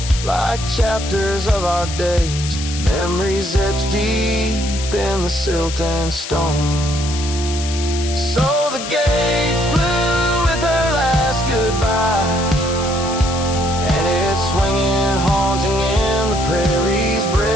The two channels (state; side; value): noise; left; hiss, 9 dB below the sound